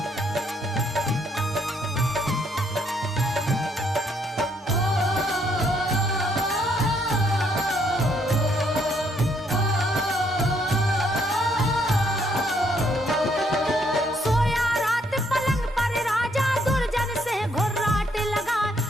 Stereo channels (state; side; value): normal; both; correlation 0.70